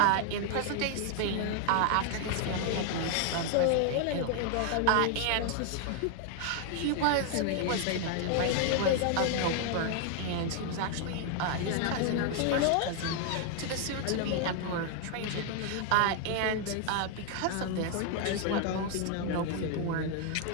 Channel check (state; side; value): different; both; correlation 0.00